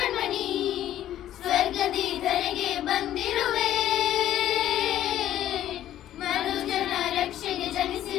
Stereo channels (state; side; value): quieter; right; 12.3 dB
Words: ಸ್ವರ್ಗದಿ ಧರೆಗೆ ಬಂದಿರುವೆ, ಮನುಜನ ರಕ್ಷೆಗೆ